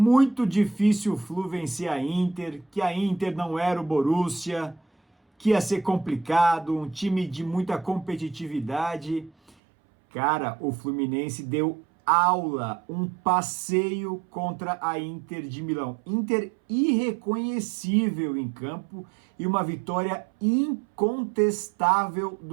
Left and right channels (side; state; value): left; drops out; at 9.6 s